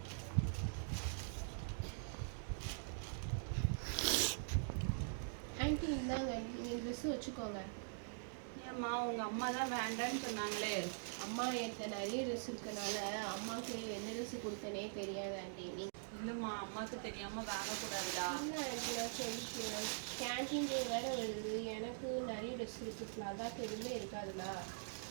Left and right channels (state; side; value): silent; left; digital silence